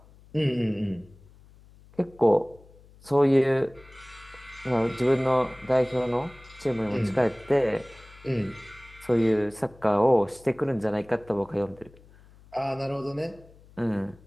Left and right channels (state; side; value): noise; left; hum, 25 dB below the sound